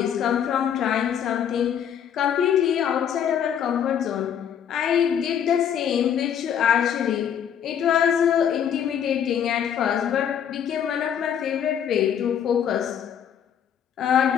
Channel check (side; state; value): right; quieter; 8.8 dB